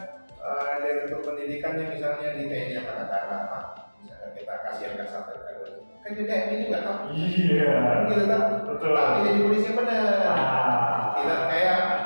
direktur pendidikannya misalnya di TNI Angkatan Darat, misalnya kita kasih angka sampai kan juga HMI juga tahu. Gitu kan? Betul. Tapi jadi polisi yang benar. Tidak kayak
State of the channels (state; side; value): inverted; both; correlation -1.00